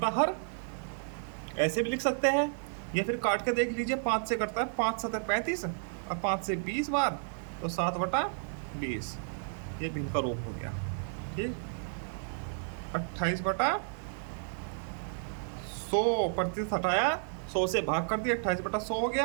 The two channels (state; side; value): silent; left; 56 dB below the other